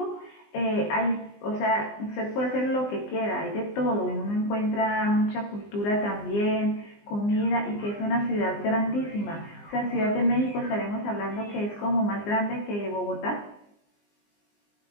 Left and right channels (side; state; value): right; late; 20 ms